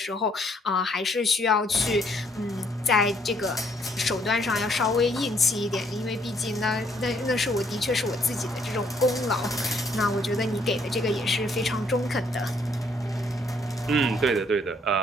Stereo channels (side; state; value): both; normal; correlation 0.67